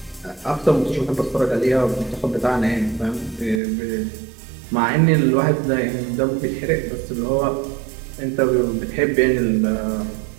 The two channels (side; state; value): left; drops out; at 3.6 s